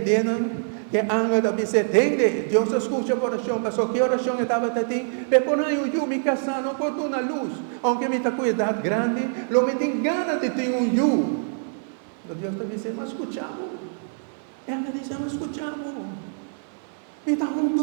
que anga da se entende, Deus escuta a oração, mas que oração estava tendo, por aí eu me casar, não por uma luz, aunque me está com idade grande, lo me tem ganas de ter um eu. Deus está dizendo, mas escutamos. Ela diz, mas escutamos. Me está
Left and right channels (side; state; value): left; silent; 58 dB below the other